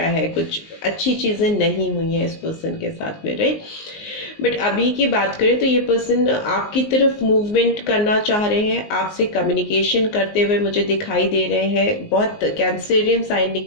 है, कुछ अच्छी चीज़ें नहीं हुई हैं इस पर्सन के साथ में, राइट। बट अभी की बात करें तो ये पर्सन आपकी तरफ मूवमेंट करना चाह रहे हैं, आपसे कम्युनिकेशन करते हुए मुझे दिखाई दे रहे हैं। बहुत कैंसरियन साइन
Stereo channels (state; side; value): late; right; 19 ms